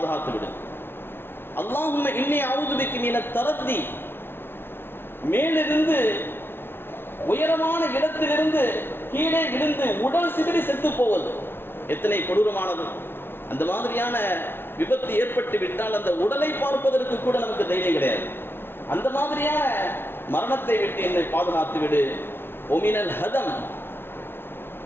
விடு. அல்லாஹும்ம இன்னி அஊது பிக மினத் தரத்தி, மேலிருந்து உயரமான இடத்திலிருந்து கீழே விழுந்து உடல் சிதறி செத்து போவது எத்தனை கொடூரமானது. அந்த மாதிரியான விபத்து ஏற்பட்டு விட்டால் அந்த உடலை பார்ப்பதற்கு கூட நமக்கு தைரியம் கிடையாது. அந்த மாதிரியான மரணத்தை விட்டு என்னை பாதுகாத்து விடு. ஒமினல் ஹதம்,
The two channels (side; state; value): right; late; 0.11 ms